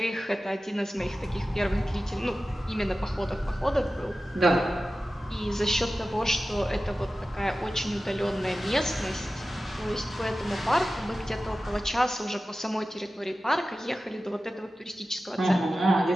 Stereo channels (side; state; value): both; normal; correlation 0.94